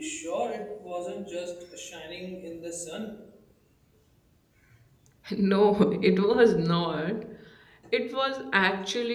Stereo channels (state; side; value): identical; both; correlation 1.00